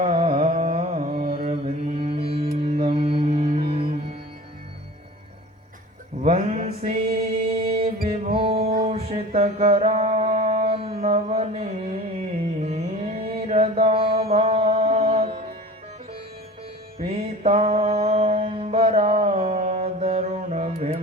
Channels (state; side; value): normal; both; correlation 0.39